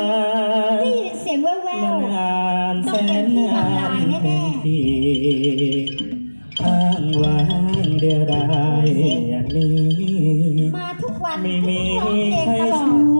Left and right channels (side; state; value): both; inverted; correlation -1.00